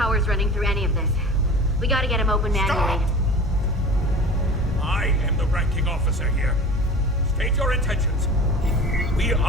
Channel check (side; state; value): both; normal; correlation 0.38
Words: running through any of this. We gotta get him open manually. I am the ranking officer here. State your intentions. We